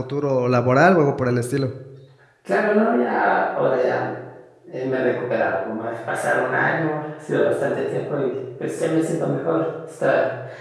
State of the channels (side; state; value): both; identical; correlation 1.00